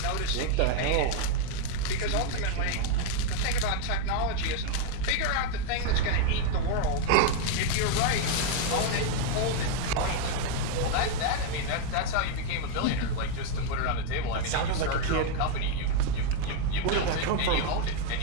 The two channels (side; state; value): both; different; correlation 0.01